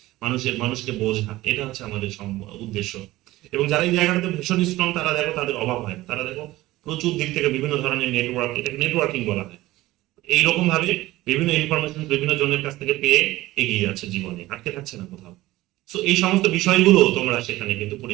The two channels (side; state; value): left; quieter; 17.5 dB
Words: মানুষকে বোঝা, এটা হচ্ছে আমাদের উদ্দেশ্য। এবং যারা এই জায়গাটাতে ভীষণ স্ট্রং তারা দেখো তাদের অভাব হয়, তারা দেখো প্রচুর দিক থেকে বিভিন্ন ধরনের নেটওয়ার্ক, এটাকে নেটওয়ার্কিং বলা হয়, এইরকম ভাবে বিভিন্ন ইনফরমেশন বিভিন্ন জনের কাছ থেকে পেয়ে এগিয়ে যাচ্ছে জীবনে, আটকে থাকছে না কোথাও। সো এই সমস্ত বিষয়গুলো তোমরা সেখানে কিন্তু